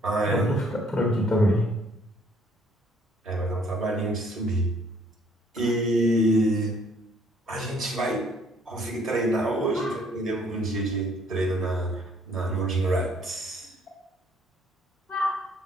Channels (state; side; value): normal; both; correlation 0.62